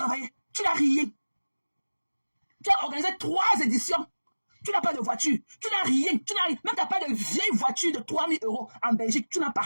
Tu n'as rien. Tu as organisé 3 éditions. Tu n'as pas de voiture. Tu n'as rien. Tu n'as rien. Même tu n'as pas de vieille voiture de 3 000 € en Belgique. Tu n'as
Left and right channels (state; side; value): inverted; both; correlation -1.00